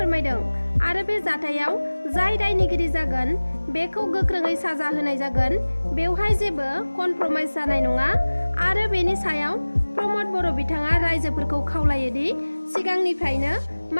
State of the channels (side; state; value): both; inverted; correlation -1.00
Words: आरो बे जाथायाव जाय दायनिगिरि जागोन बेखौ गोख्रोङै साजा होनाय जागोन। बेवहाय जेबो कनप्रमाइज जानाय नङा आरो बेनि सायाव प्रमद बर' बिथाङा रायजोफोरखौ खावलायोदि सिगांनिफ्रायनो